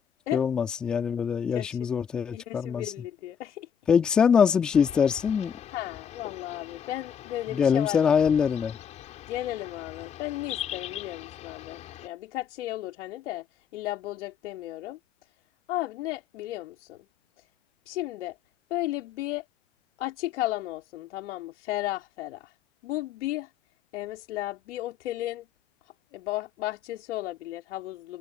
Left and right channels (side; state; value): right; quieter; 7.8 dB